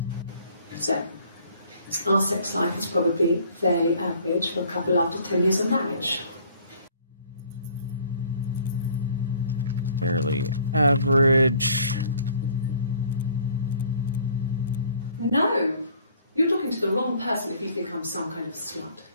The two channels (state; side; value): inverted; both; correlation -0.57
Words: So, our sex life is probably fairly average for a couple after 10 years of marriage. Fairly average. No! You're talking to the wrong person if you think I'm some kind of slut.